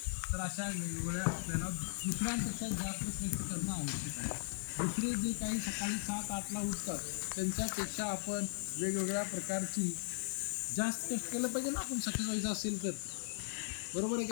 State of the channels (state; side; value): silent; right; digital silence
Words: तर अशा वेगवेगळ्या आपल्याला दुसऱ्यांपेक्षा जास्त प्रयत्न करणं आवश्यक आहे. दुसरे जे काही सकाळी 7-8ला उठतात, त्यांच्यापेक्षा आपण वेगवेगळ्या प्रकारची जास्त कष्ट केलं पाहिजे ना आपण सक्सेस व्हायचं असेल तर. बरोबर आहे